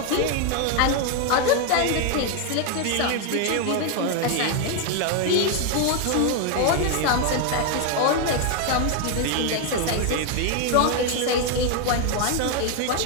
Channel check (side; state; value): both; different; correlation 0.01